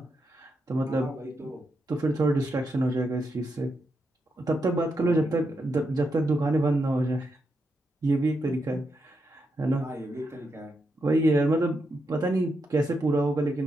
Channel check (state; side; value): normal; both; correlation 0.83